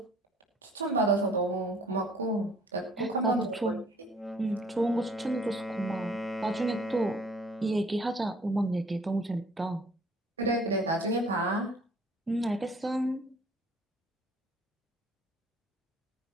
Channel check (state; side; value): normal; both; correlation 0.56